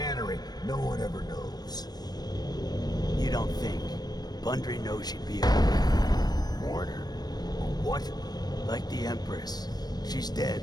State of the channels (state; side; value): late; right; 0.19 ms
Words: No one ever knows. You don't think? Bundry knows she'd be a martyr. What? Like the Empress. She's